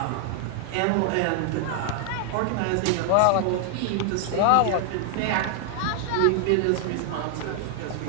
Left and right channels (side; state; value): both; different; correlation 0.00